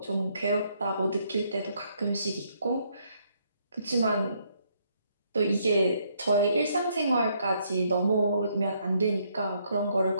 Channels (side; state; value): both; inverted; correlation -0.71